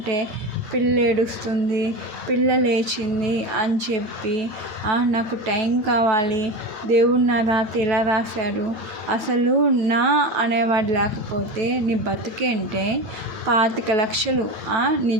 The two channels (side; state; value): left; late; 9.4 ms